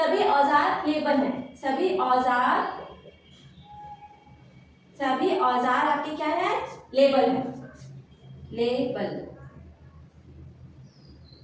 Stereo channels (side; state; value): both; identical; correlation 1.00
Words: औजार लेबल है। सभी औजार आपके क्या है? लेबल है, लेबल,